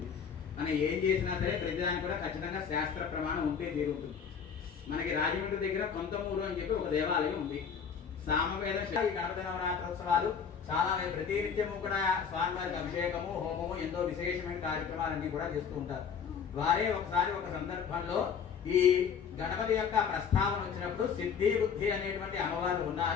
మనం ఏం చేసినా సరే ప్రతిదానికి కూడా ఖచ్చితంగా శాస్త్ర ప్రమాణం ఉంటే తీరుంటుంది. మనకి రాజమండ్రి దగ్గర కొంతమూరు అని చెప్పి ఒక దేవాలయం ఉంది. సామవేద ఈ గణపతి నవరాత్రోత్సవాలు చాలా ప్రతినిత్యము కూడా స్వామివారికి అభిషేకము, హోమము, ఎంతో విశేషమైన కార్యక్రమాలన్నీ కూడా చేస్తూ ఉంటారు. వారే ఒకసారి ఒక సందర్భంలో ఈ గణపతి యొక్క ప్రస్తావన వచ్చినప్పుడు సిద్ధి బుద్ధి అనేటువంటి అమ్మవారు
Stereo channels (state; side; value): quieter; right; 6.8 dB